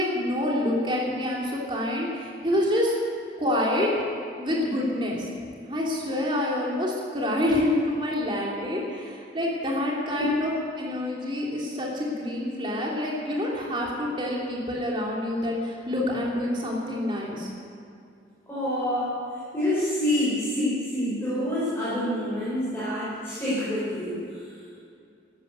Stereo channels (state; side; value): normal; both; correlation 0.46